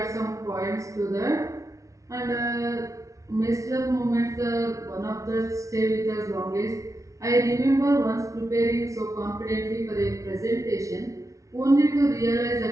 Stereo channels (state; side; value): late; left; 0.16 ms